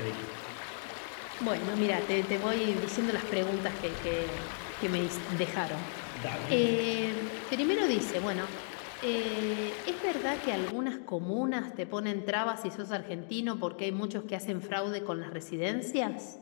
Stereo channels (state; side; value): silent; right; digital silence